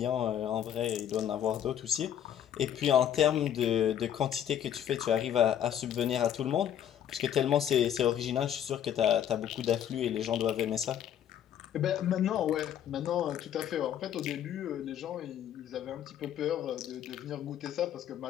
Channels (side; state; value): right; quieter; 10.0 dB